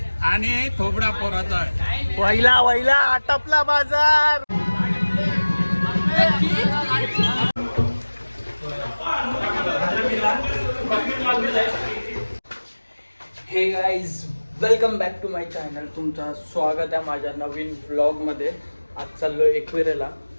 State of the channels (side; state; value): both; inverted; correlation -1.00